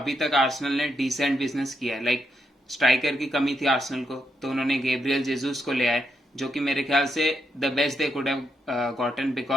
तक आर्सेनल ने डिसेंट बिजनेस किया है। लाइक स्ट्राइकर की कमी थी आर्सेनल को, तो उन्होंने गैब्रियल जेसूस को ले आए, जो कि मेरे ख्याल से the best they could have gotten,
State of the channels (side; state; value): both; normal; correlation 0.81